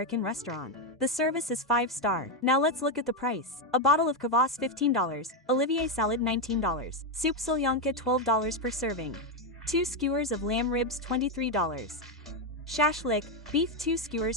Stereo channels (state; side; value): normal; both; correlation 0.05